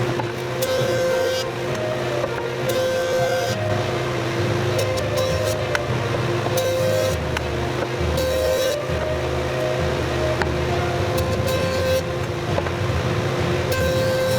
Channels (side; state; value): both; identical; correlation 1.00